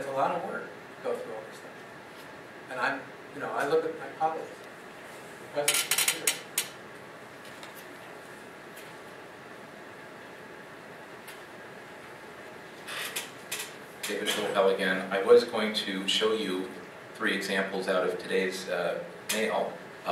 a lot of work to go through all this stuff. And I look at my colleagues. David Schulfell again. I was going to show you 3 examples out of today's mail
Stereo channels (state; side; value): identical; both; correlation 1.00